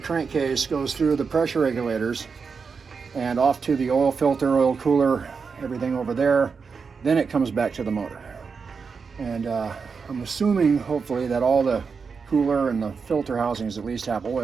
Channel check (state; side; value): quieter; left; 5.4 dB